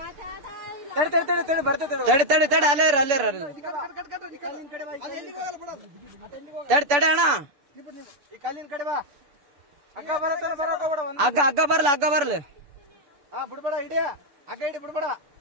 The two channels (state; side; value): late; left; 6.6 ms